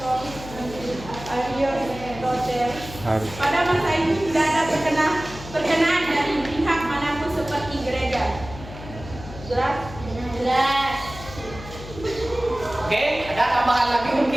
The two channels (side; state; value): left; noise; hum, 14 dB below the sound